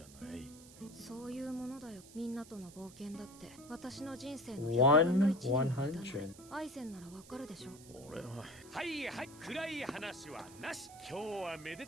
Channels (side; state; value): right; noise; hiss, 19 dB below the sound